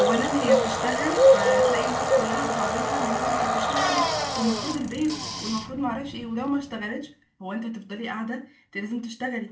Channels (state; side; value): identical; both; correlation 1.00